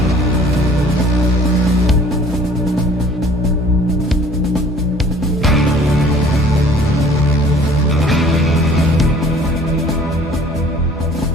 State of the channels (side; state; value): both; normal; correlation 0.53